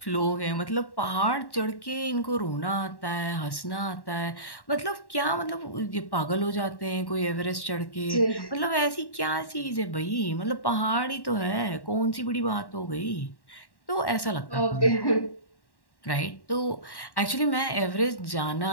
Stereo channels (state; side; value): late; right; 1.1 ms